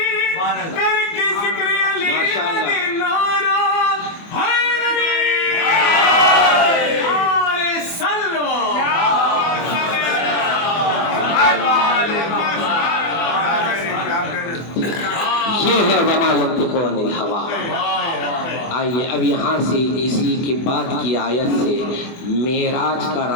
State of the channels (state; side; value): late; right; 25 ms